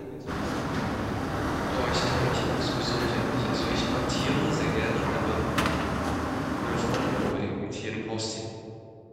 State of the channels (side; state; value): both; identical; correlation 1.00